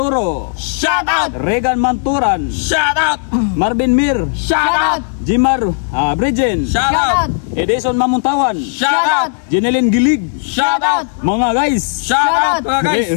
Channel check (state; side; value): silent; right; digital silence